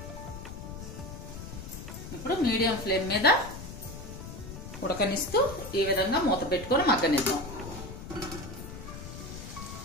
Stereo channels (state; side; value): noise; left; rumble, 10 dB below the sound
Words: ఇప్పుడు మీడియం ఫ్లేమ్ మీద ఉడకనిస్తూ ఈ విధంగా మూత పెట్టుకొని మగ్గనిద్దాం.